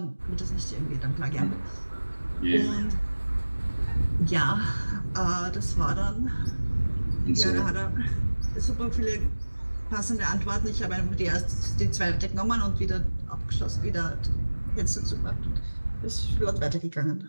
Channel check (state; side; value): inverted; both; correlation -1.00